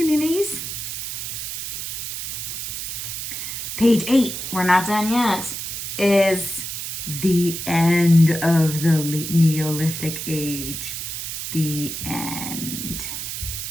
Page 8, we're not done yet, is the end of the Neolithic Age. The end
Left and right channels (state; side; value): noise; right; hiss, 5 dB below the sound